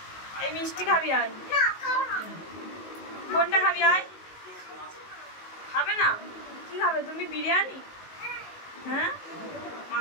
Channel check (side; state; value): right; late; 19 ms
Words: এই মিষ্টি খাবি আজ? কোনটা খাবি আজ? খাবে না? কি খাবে তুমি? বিরিয়ানি? হ্যাঁ,